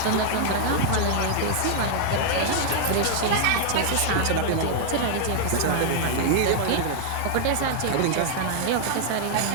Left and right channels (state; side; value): different; both; correlation -0.01